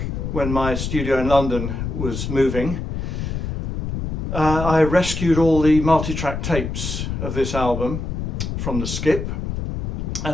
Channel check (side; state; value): left; noise; rumble, 3 dB below the sound